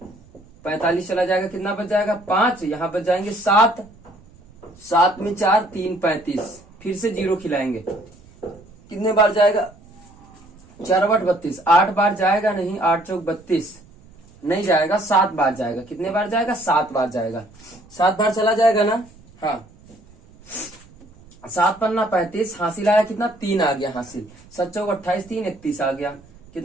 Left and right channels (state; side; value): noise; right; rumble, 26 dB below the sound